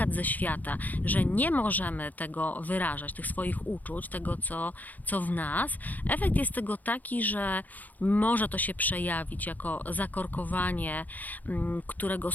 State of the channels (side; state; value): right; late; 0.081 ms